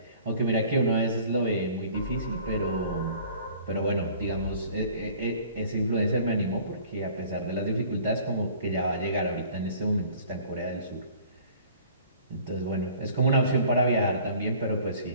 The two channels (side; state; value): both; inverted; correlation -0.50